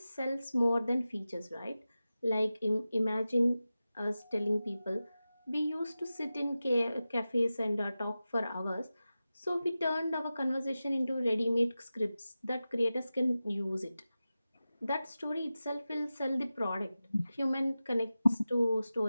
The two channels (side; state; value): both; inverted; correlation -0.94